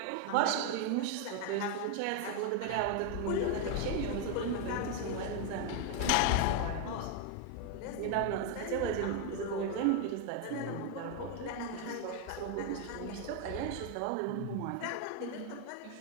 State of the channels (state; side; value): different; both; correlation 0.01